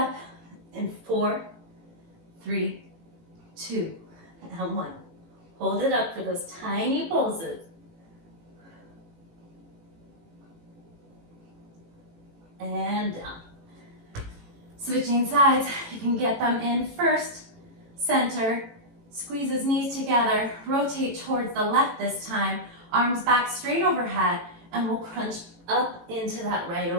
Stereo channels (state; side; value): late; left; 18 ms